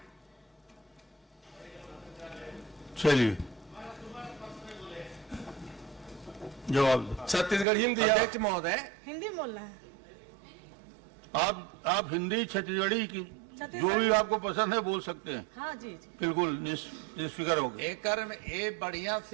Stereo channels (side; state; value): left; drops out; at 7.7 s